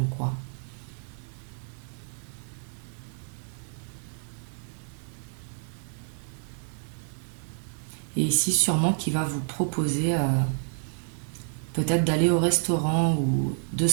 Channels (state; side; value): silent; left; 59 dB below the other